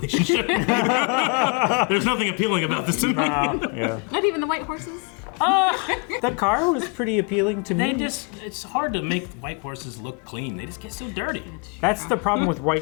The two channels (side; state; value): right; quieter; 34.2 dB